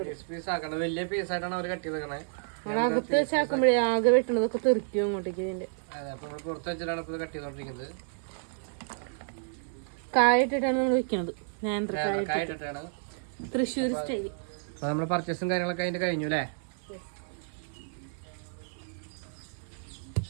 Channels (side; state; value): left; silent; digital silence